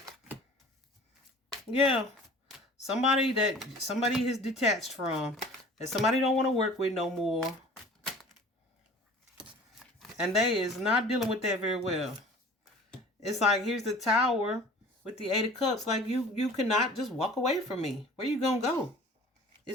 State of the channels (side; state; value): both; normal; correlation 0.45